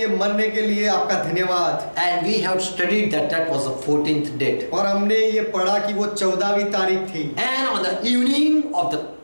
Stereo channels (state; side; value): inverted; both; correlation -1.00